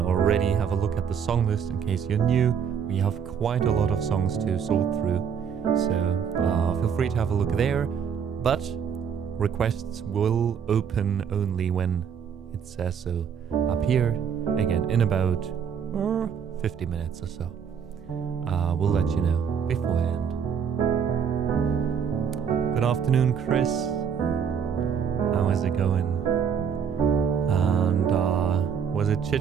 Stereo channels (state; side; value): quieter; left; 7.3 dB